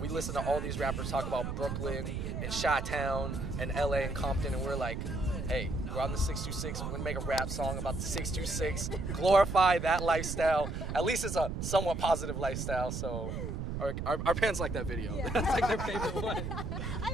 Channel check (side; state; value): right; noise; rumble, 4 dB below the sound